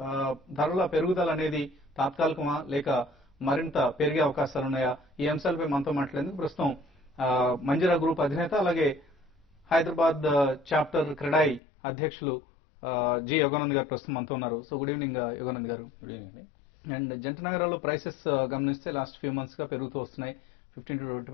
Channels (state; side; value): drops out; right; at 11.6 s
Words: ధరల పెరుగుదల అనేది తాత్కాలికమా లేక మరింత పెరిగే అవకాశాలున్నాయా? ఈ అంశాలపై మనతో మాట్లాడేందుకు ప్రస్తుతం మంజీరా గ్రూప్ అధినేత అలాగే హైదరాబాద్ చాప్టర్ క్రెడాయి అధ్యక్షులు జి యోగానంద్ గారు ప్రస్తుతం మనతో ఉన్నారు. సో గుడ్ ఈవినింగ్ యోగానంద్ గారు. అండ్ జంట నగరాల్లో ప్రైసెస్ గమనిస్తే లాస్ట్ ఫ్యూ మంత్స్ గా పెరుగుతూ వస్తున్నాయి. 15